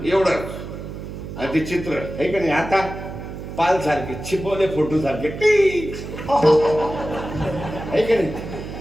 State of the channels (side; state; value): right; noise; hum, 9 dB below the sound